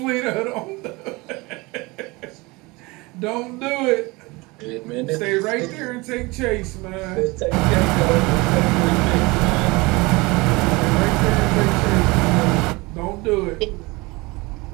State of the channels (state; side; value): quieter; left; 24.1 dB